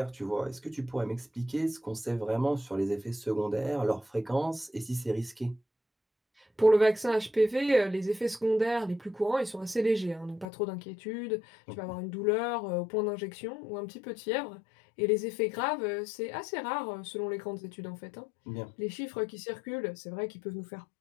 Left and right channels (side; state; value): right; drops out; at 10.5 s